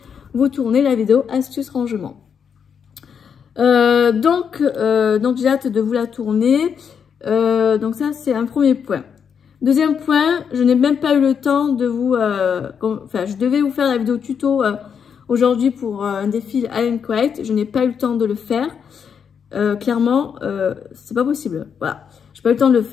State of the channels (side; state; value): right; quieter; 7.1 dB